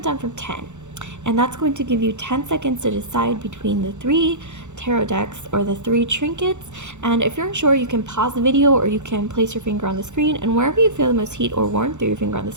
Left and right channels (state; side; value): late; left; 0.84 ms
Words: down from 10. And that's going to give you 10 seconds to decide between the 3 tarot decks or the 3 trinkets. And if you're unsure, you can pause the video or you can place your finger on the screen, and wherever you feel the most heat or warmth through your finger on the